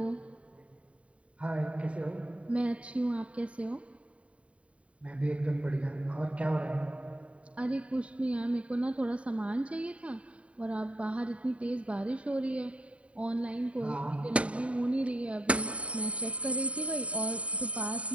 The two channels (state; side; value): late; left; 0.064 ms